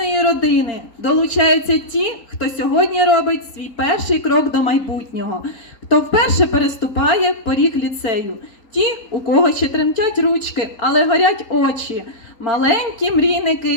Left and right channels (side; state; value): right; late; 4.4 ms